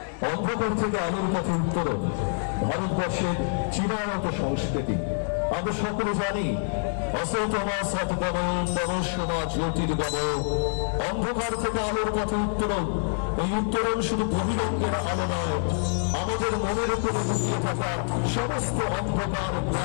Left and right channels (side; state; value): right; silent; digital silence